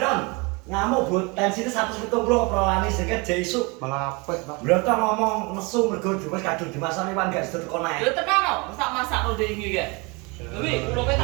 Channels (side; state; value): left; quieter; 28.0 dB